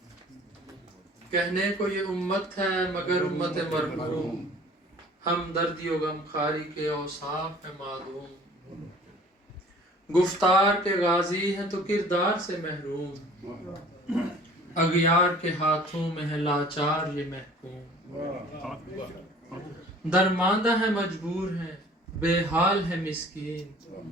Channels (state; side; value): normal; both; correlation 0.49